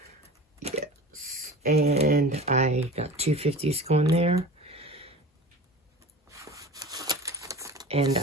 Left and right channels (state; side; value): normal; both; correlation 0.36